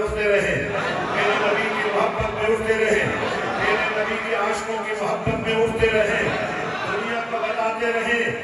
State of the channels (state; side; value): identical; both; correlation 1.00